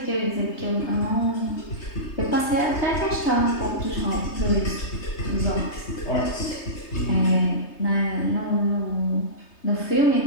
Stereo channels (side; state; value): right; late; 3.3 ms